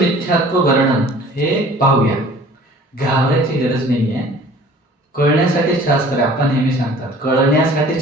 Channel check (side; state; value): both; normal; correlation 0.49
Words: वर्णन हे पाहूया. घाबरायची गरज नाही आहे. कळण्यासाठी शास्त्र आहे. आपण नेहमी सांगतात कळण्यासाठी